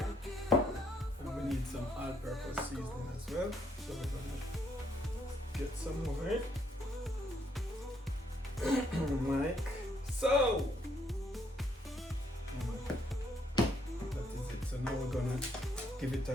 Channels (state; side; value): normal; both; correlation 0.71